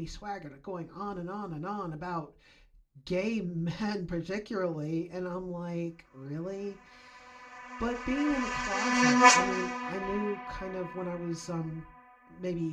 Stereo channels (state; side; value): identical; both; correlation 1.00